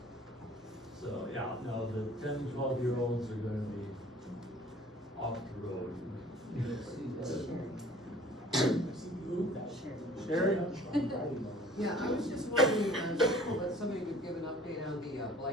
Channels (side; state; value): both; normal; correlation 0.51